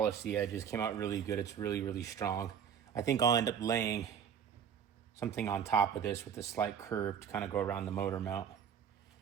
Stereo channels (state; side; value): quieter; left; 8.1 dB